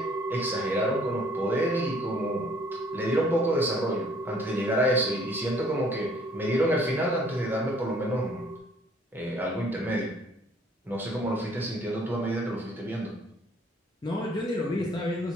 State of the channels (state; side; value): normal; both; correlation 0.59